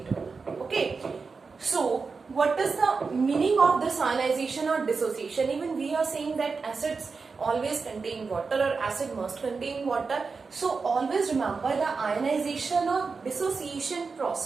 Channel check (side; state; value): left; quieter; 4.7 dB